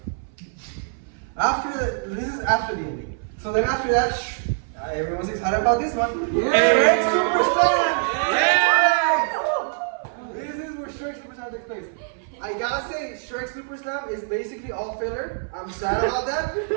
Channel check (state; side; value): silent; left; 59 dB below the other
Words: This is after the ending. So then after that, everyone's excited about this one. Shrek Super Slam! This is where Shrek Super Slam takes place. I gotta say, Shrek Super Slam is basically all filler. I'm sad about that.